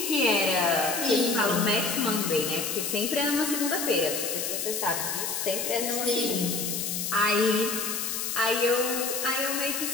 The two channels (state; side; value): noise; left; hiss, 2 dB below the sound